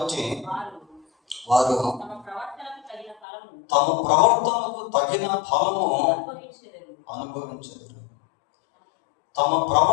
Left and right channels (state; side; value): drops out; right; at 3.2 s